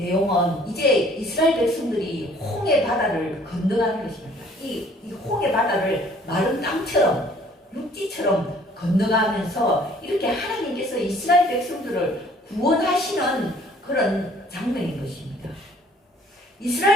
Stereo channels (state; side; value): normal; both; correlation 0.57